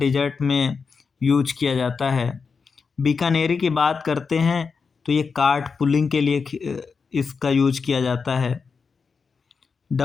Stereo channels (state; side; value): quieter; right; 5.2 dB